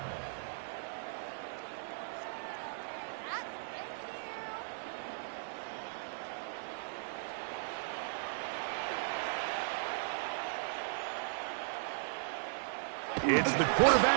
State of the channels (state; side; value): silent; left; 53 dB below the other